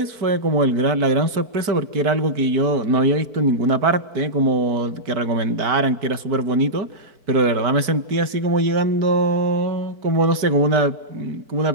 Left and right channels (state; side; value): late; left; 4.6 ms